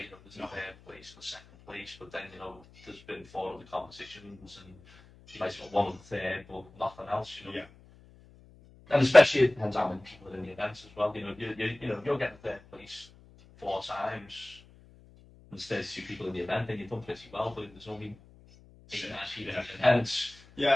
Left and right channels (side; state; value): left; noise; hum, 24 dB below the sound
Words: you know, there's a third place and a second place, but then, you know, there's been 4 other competitions and you might have got one of the third, but nothing else, you know. Yeah. And especially it depends how many people are in the events as well. You know, you're getting third place 4 times. There's 32 people in the event, then you've done pretty well, but if there's only 8 or 9 people in the event,